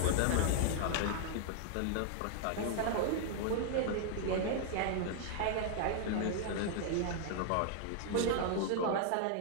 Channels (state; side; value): different; both; correlation 0.00